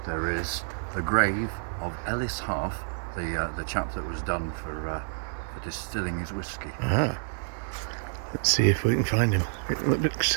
There is the grave of Ellis Heath, the chap that was done for distilling his whiskey. Ah. Let's see if we can find him. It looks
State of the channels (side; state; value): left; silent; 59 dB below the other